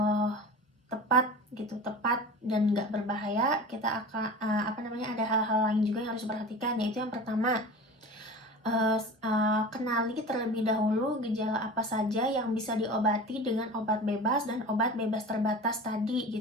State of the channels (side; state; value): both; normal; correlation 0.35